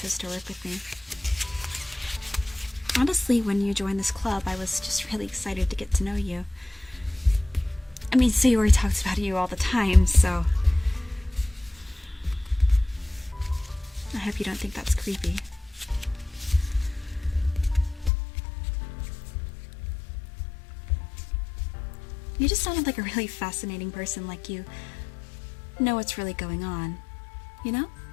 to work with me. Honestly, when you joined this club, I was just really excited to get to know you. I mean, Sayori talks about you all the time, so I hope you don't think that's creepy. You just sounded like a really fascinating person, like you know what's really going on. You know?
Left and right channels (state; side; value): drops out; right; at 18.1 s